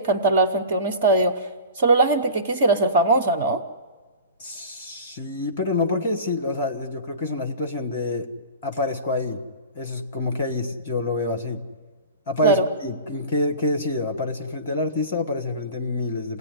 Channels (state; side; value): inverted; both; correlation -0.36